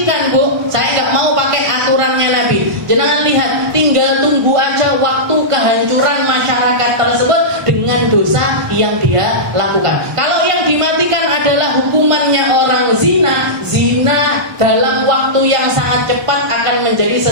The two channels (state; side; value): late; left; 1.4 ms